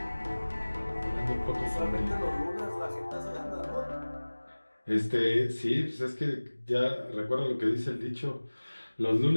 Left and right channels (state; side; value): inverted; both; correlation -1.00